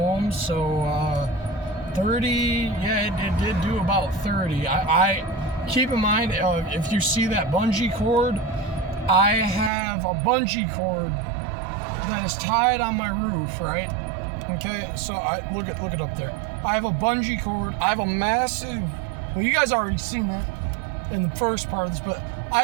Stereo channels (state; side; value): drops out; left; at 9.7 s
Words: so 30, yeah, it did do about 30. I keep in mind, if you see that bungee cord, I have a bungee cord that is tied on my roof, right? Okay, so look it up there. I have a bungee cord. I have a massive, well, you guys already seen that in the first part of this, but I